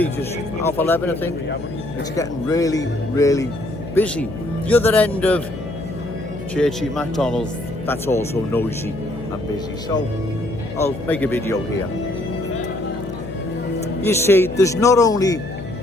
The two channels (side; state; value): left; noise; hum, 10 dB below the sound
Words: just 11:30 I think. It's getting really, really busy. The other end of Churchy McDonald's, that's also noisy and busy. So I'll make a video here. You see, there's not only